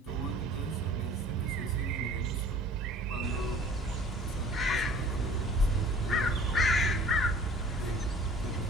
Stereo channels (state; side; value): normal; both; correlation 0.49